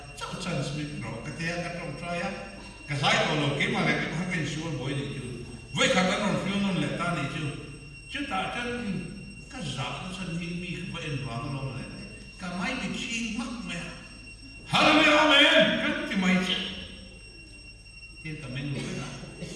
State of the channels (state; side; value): identical; both; correlation 1.00